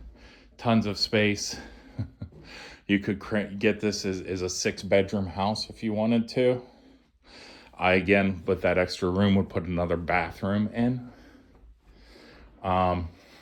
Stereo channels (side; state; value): both; identical; correlation 1.00